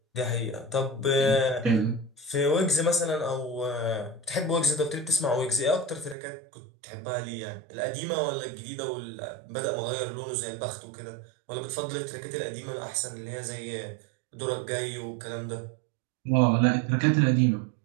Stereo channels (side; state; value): left; drops out; at 6.2 s